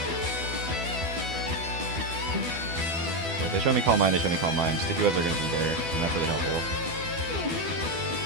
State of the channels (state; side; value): late; left; 12 ms